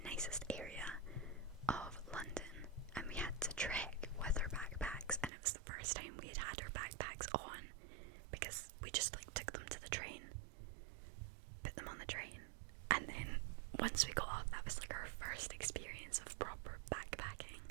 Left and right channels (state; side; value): drops out; left; at 5.3 s